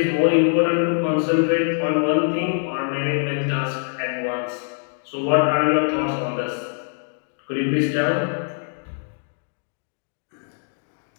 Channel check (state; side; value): silent; right; digital silence